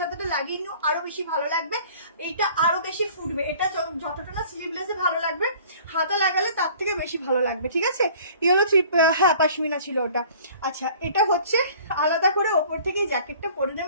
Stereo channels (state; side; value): inverted; both; correlation -0.49